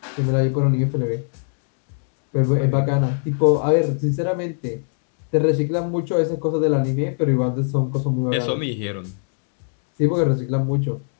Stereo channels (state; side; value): silent; right; 64 dB below the other